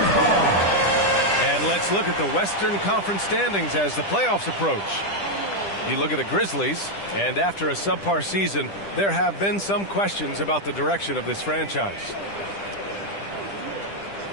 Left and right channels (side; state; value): right; late; 10 ms